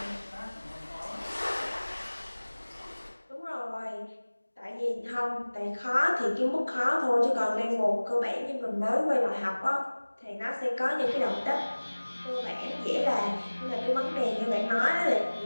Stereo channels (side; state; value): both; inverted; correlation -1.00